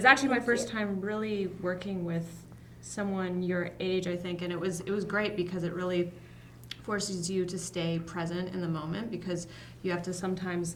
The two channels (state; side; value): identical; both; correlation 1.00